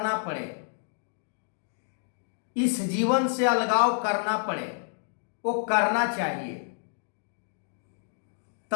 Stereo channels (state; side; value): silent; right; digital silence